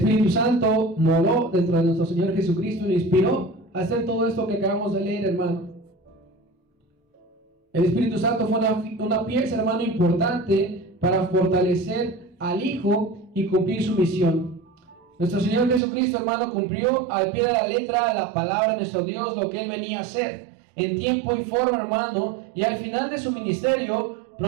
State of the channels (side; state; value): left; drops out; at 15.8 s